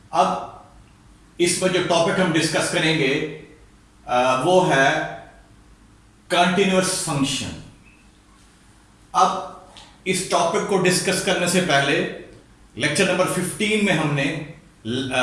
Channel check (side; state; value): both; identical; correlation 1.00